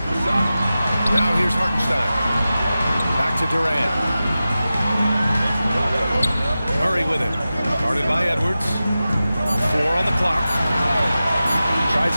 Now here's Hartenstein. Back to Durant. Murray with it. Guarded by Edwards. 4 on the clock. Tries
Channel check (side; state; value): both; inverted; correlation -0.94